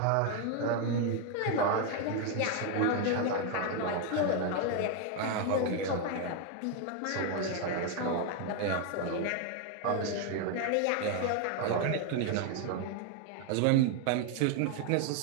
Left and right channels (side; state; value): both; different; correlation 0.01